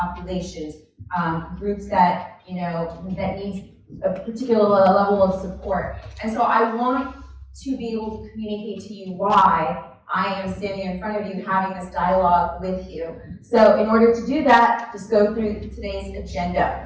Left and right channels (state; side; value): identical; both; correlation 1.00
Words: groups that, that need a particular level of support. And so I want to be able to communicate to you why I am standing in front of you having this dialogue with you. So in order to do that, just go through today's